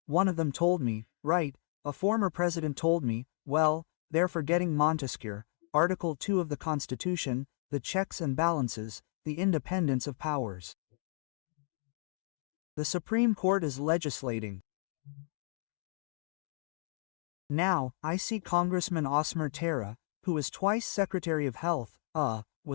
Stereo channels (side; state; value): right; silent; 56 dB below the other